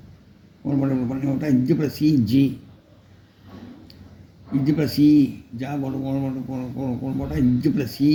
கோல் போட்டு பண்ணி விட்டால் இச்சப்பட சி ஜி இச்சப்பட சி ஜா போட்டு கோல் போட்டால் இச்சப்பட சி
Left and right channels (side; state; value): both; identical; correlation 1.00